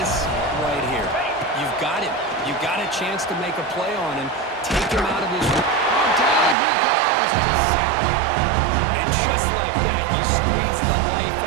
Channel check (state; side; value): drops out; left; at 6.6 s